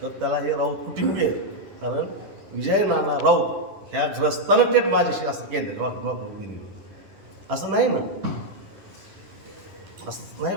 तर त्याला हे राऊत कुटुंबीय आहे, कारण विजय नाना राऊत ह्या ग्रस्तानं थेट माझ्याशी असं केलं वागणूक दिली, असं नाही ना, असं नाही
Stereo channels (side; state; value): left; late; 10 ms